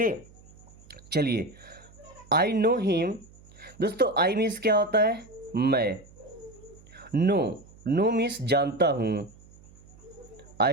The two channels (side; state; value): right; noise; hum, 24 dB below the sound